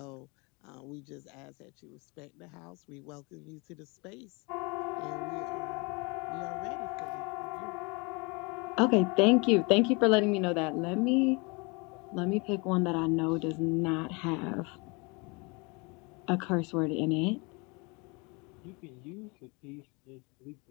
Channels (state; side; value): quieter; right; 29.2 dB